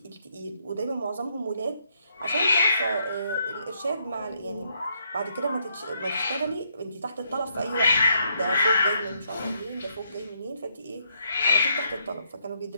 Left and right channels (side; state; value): both; inverted; correlation -0.74